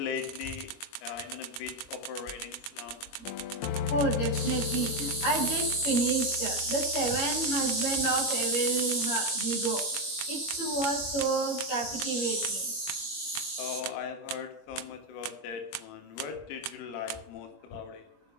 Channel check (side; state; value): right; late; 21 ms